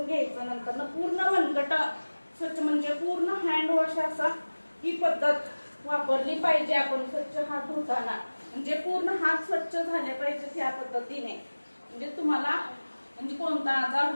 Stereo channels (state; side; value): inverted; both; correlation -1.00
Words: घ्यायचं, नंतर ना पूर्ण मनगट स्वच्छ म्हणजे पूर्ण हँड वॉश असा ही पद्धत वापरली पाहिजे आपण स्वच्छ हात धुताना, म्हणजे पूर्ण हात स्वच्छ झाले पाहिजेत ह्या पद्धतीने, म्हणजे तुम्हाला म्हणजे कोणता आजार